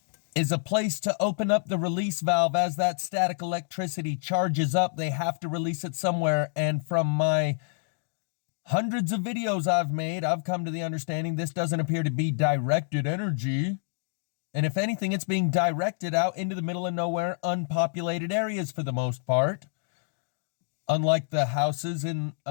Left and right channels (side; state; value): right; silent; 60 dB below the other